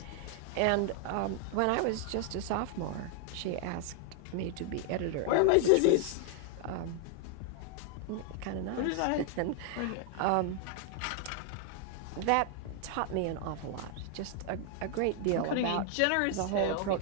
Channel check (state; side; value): different; both; correlation 0.00